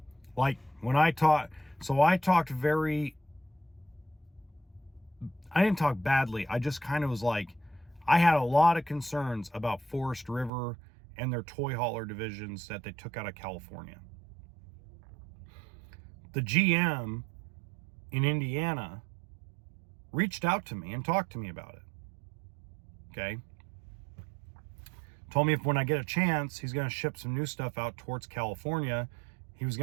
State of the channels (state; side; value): drops out; left; at 10.5 s